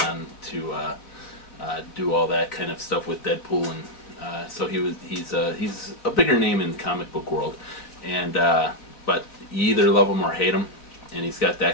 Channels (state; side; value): late; right; 3.9 ms